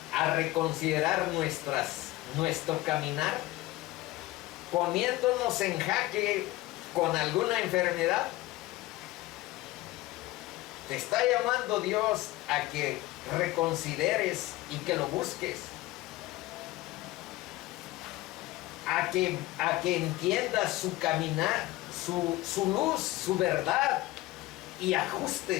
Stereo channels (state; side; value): quieter; right; 18.3 dB